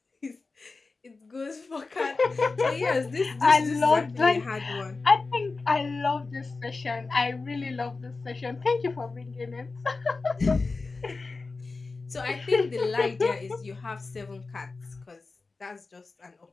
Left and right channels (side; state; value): right; quieter; 3.9 dB